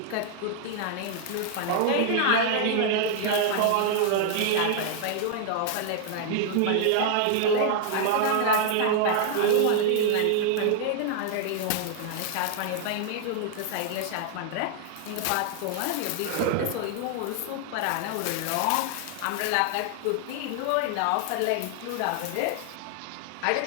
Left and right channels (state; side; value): different; both; correlation 0.00